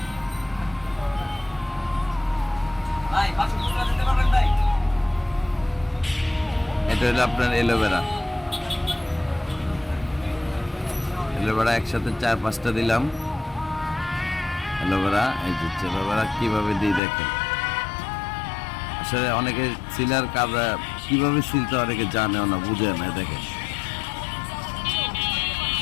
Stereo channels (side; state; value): right; drops out; at 17.0 s